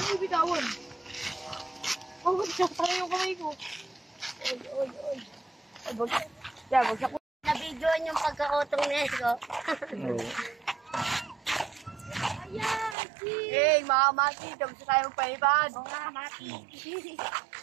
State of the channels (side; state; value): left; drops out; at 13.0 s